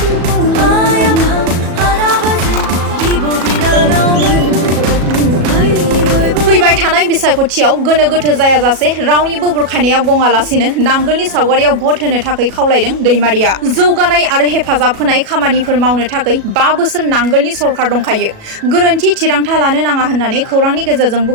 फैबाय थानाय बिसायख'थियाव गोनो गोथो जायाजासे रावनिबो बुरखायनायाव गङालासिनो नांगोलनि सावगारियाव भट होनो थाखाय खावलायदों दैमारिया। जौगानाय आरो हेफाजाब होनाय खामानिफोर मावनो थाखाय 5 बोसोर नांगोलनि सरकार दंखायो। गोरोन्थि थिरांथा लानो नाङा होननानै खौरांनि गेजेरजों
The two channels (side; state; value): left; late; 37 ms